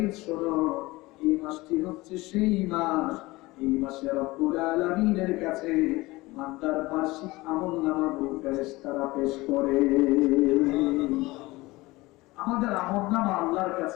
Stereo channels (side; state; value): right; quieter; 20.8 dB